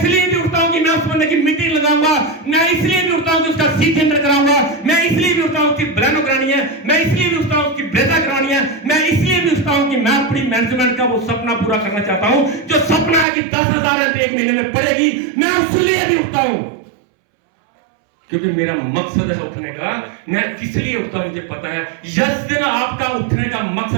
भी उठता हूं कि मैं उस बंदे की मीटिंग लगाऊंगा। मैं इसलिए भी उठता हूं कि उसका सी टेंडर कराऊंगा। मैं इसलिए भी उठता हूं कि ब्लैनो करानी है। मैं इसलिए भी उठता हूं कि ब्रेजा करानी है। मैं इसलिए भी उठता हूं कि मैं अपनी मैनेजमेंट का वो सपना पूरा करना चाहता हूं, जो सपना है कि 10,000 रन एक महीने में पड़ेगी। मैं उसलिए भी उठता हूं क्योंकि मेरा मकसद है उठने का। मैं किस लिए उठता हूं मुझे पता है। जिस दिन आपका उठने का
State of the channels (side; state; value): left; drops out; at 13.2 s